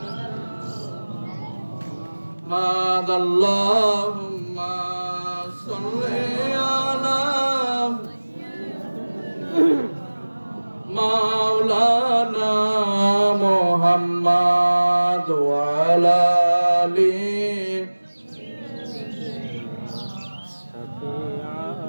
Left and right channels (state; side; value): inverted; both; correlation -1.00